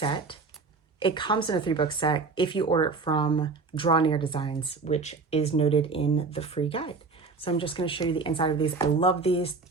It comes in a 3-book set if you order it from Draw Near Designs, which is noted in the free guide. So I'm just going to show you the inside of these. I love these.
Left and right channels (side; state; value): left; quieter; 4.3 dB